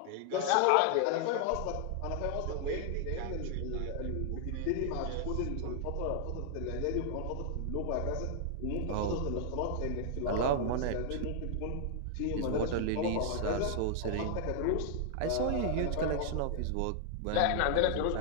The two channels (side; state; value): both; different; correlation 0.00